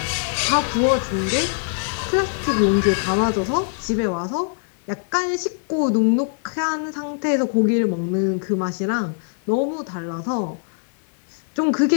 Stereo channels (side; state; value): right; silent; digital silence